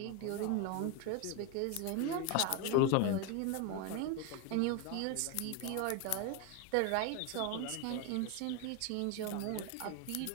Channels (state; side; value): different; both; correlation 0.02